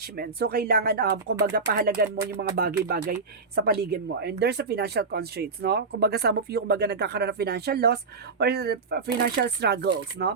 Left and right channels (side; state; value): left; quieter; 4.4 dB